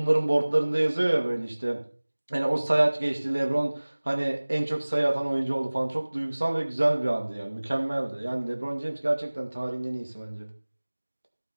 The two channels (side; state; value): both; inverted; correlation -1.00